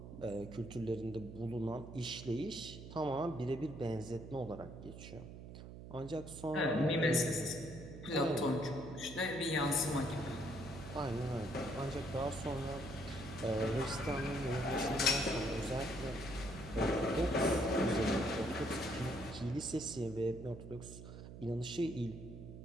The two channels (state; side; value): noise; right; hum, 12 dB below the sound